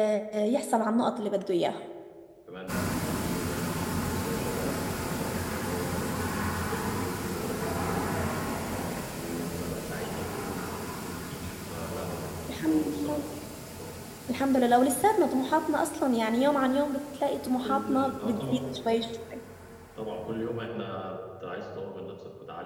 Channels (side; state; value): both; identical; correlation 1.00